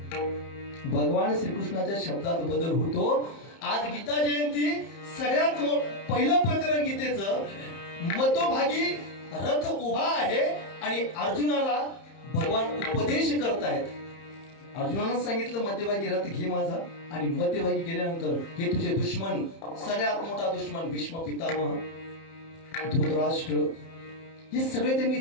भगवान श्रीकृष्णाच्या शब्दात बदल होतो. आज गीता जयंती, सगळ्यात पहिलं प्रकरण गीतेचं, मतोभागी रथ उभा आहे आणि अर्जुनाला भगवान उपदेश करतायत. अर्जुनानं सांगितलं मध्यभागी रथ घे माझा, आणि मध्यभागी गेल्यानंतर हे तुझे दुश्मन, सगळ्यात मोठा दुश्मन भीष्म पितामह, धृतराष्ट्र, हे सगळे त्यांनी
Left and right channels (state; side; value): late; right; 30 ms